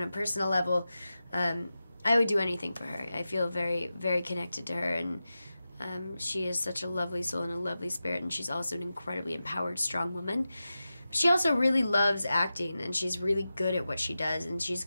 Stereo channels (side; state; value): both; inverted; correlation -0.93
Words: a personal level, I would do anything for her. I feel very, very connected to her, and she is such a lovely soul and a lovely spirit, and she's also an incredibly empowered, strong woman. She also really loves acting, and she's really good at what she does, and she's